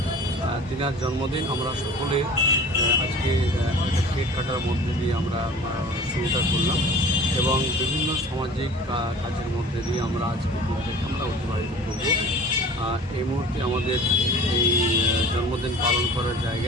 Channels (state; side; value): normal; both; correlation 0.43